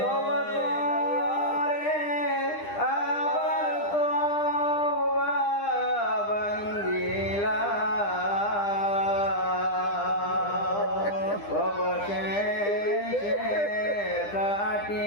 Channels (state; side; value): late; right; 9.9 ms